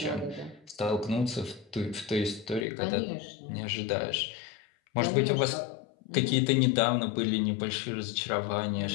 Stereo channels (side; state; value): right; drops out; at 2.7 s